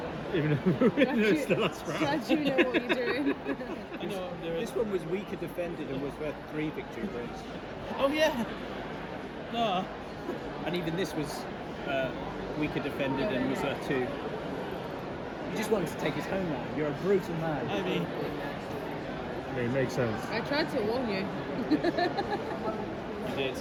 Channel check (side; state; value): both; identical; correlation 1.00